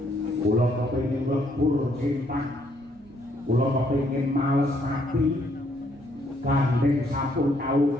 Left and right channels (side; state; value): right; noise; rumble, 27 dB below the sound